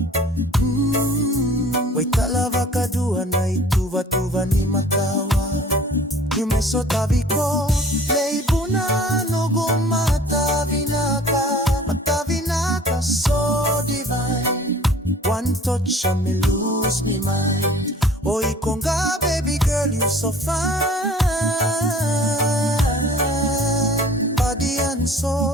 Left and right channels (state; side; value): normal; both; correlation 0.48